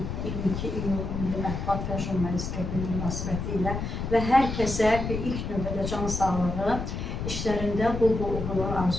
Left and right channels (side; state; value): left; noise; rumble, 4 dB below the sound